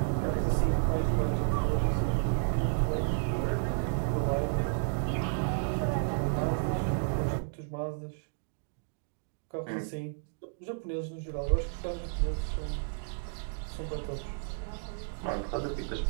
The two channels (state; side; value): silent; left; digital silence